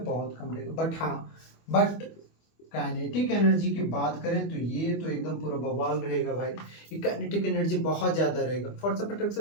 बहुत कम रहेगा। बट काइनेटिक एनर्जी की बात करें तो ये तो एकदम पूरा बवाल रहेगा भाई। ये काइनेटिक एनर्जी बहुत ज़्यादा रहेगा, force of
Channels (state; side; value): late; right; 25 ms